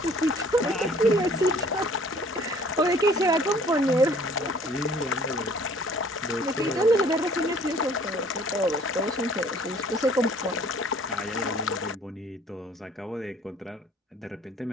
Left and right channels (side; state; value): both; normal; correlation 0.55